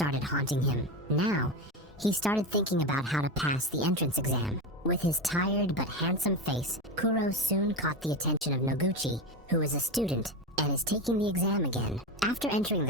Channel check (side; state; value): both; normal; correlation 0.19